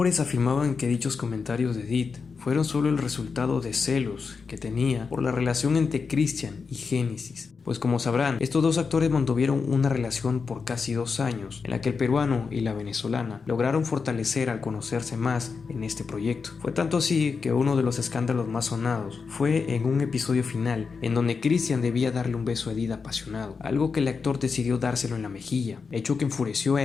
afirmaban que dichos comentarios de Edith fueron solo el resultado de celos que tenía por la relación entre Christian y Génesis. Pues como sabrán, estos dos actores mantuvieron una relación por casi 2 años, en la que el peruano y la venezolana lograron fortalecer al conocerse más en este proyecto. Fue tanto así que uno de los escándalos más sonados fue en un episodio final, en donde Christian debía darle un beso a Edith apasionado, algo que el actor decidió dárselo en la mejilla, hecho que enfureció a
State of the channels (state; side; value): quieter; right; 5.2 dB